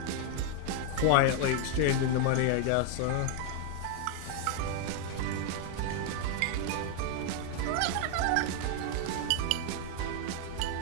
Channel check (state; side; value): different; both; correlation 0.00